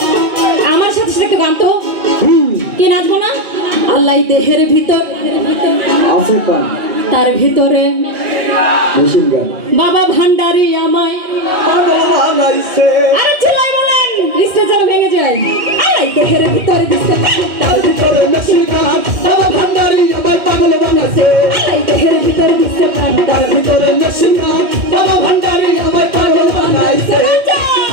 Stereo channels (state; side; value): late; left; 2.2 ms